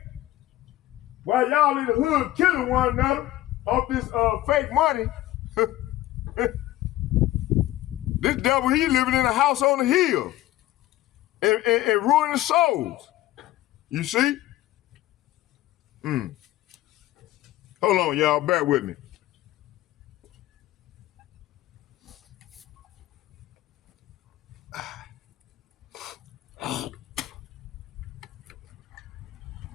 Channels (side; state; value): right; quieter; 15.4 dB